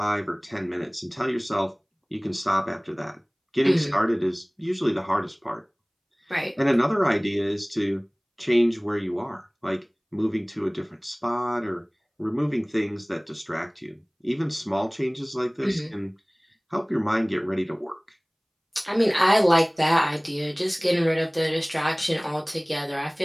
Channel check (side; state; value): both; identical; correlation 1.00